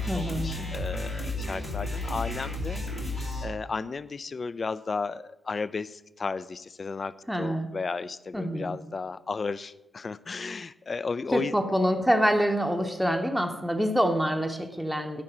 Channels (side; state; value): both; normal; correlation 0.90